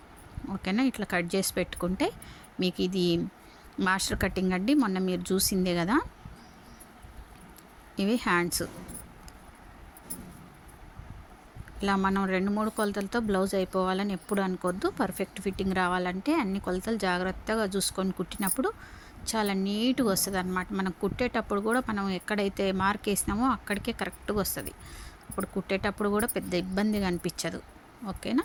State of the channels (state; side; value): identical; both; correlation 1.00